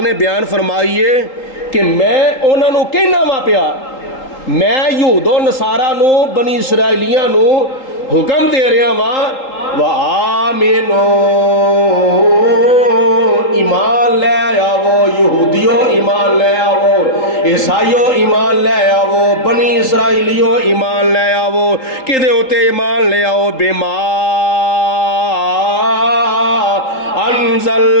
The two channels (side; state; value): right; late; 3.8 ms